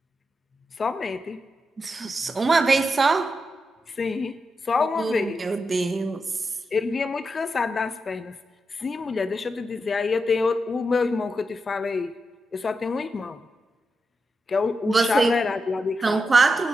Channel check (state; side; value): normal; both; correlation 0.87